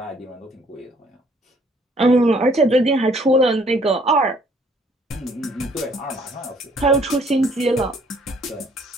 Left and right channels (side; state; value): both; normal; correlation 0.62